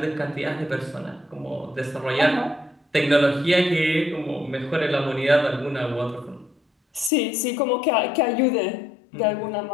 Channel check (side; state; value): right; drops out; at 7.1 s